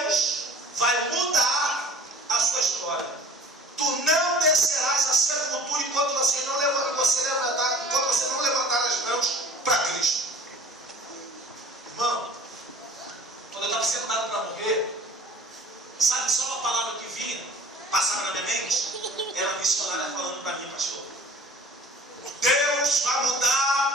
vai mudar a sua história. Tu não descerás a sepultura enquanto você não levantar as mãos para Cristo. Irmão, quando eu estava sentado para morrer, sabe só uma palavra que vinha, passava na minha mente? Era a missionária falando para mim, pastor. Deus vai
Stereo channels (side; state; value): both; normal; correlation 0.46